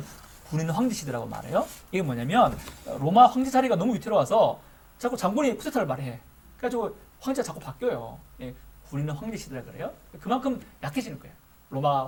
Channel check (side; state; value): both; identical; correlation 1.00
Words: 군인 황제 시대라고 말해요. 이게 뭐냐면 로마 황제 자리가 너무 위태로워서 자꾸 장군이 쿠데타를 말해. 그래가지고 황제가 자꾸 바뀌어요. 예, 군인 황제 시대라 그래요. 그만큼 약해지는 거예요. 로마